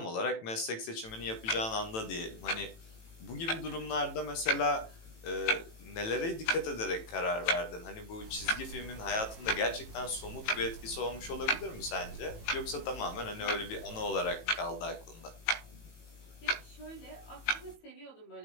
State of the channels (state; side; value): late; right; 18 ms